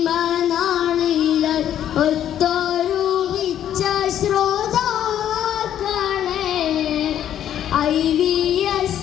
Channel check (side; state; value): right; quieter; 10.6 dB